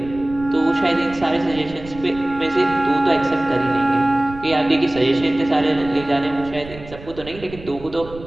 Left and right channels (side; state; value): right; noise; rumble, 16 dB below the sound